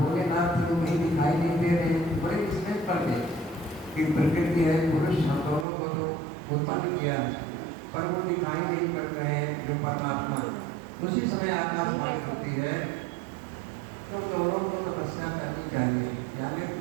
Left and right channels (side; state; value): left; drops out; at 5.7 s